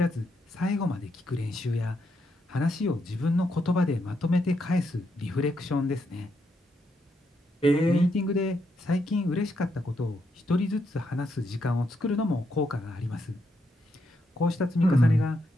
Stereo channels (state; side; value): normal; both; correlation 0.79